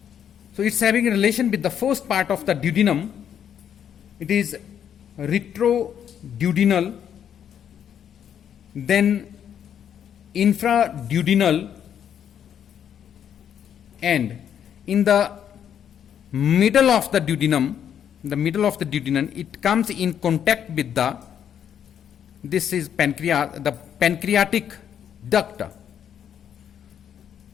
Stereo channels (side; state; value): right; quieter; 9.0 dB